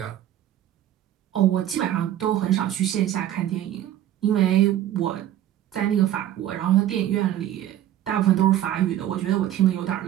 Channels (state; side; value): quieter; left; 12.1 dB